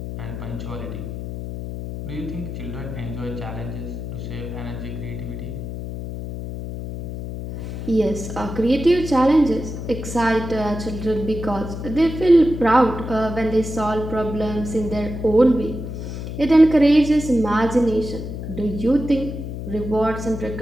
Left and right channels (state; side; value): noise; left; hum, 7 dB below the sound